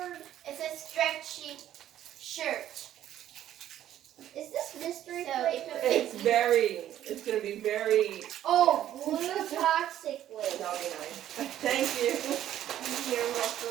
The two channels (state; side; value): quieter; left; 11.8 dB